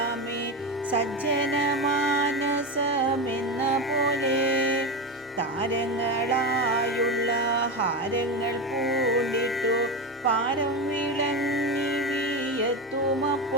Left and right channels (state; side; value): normal; both; correlation 0.18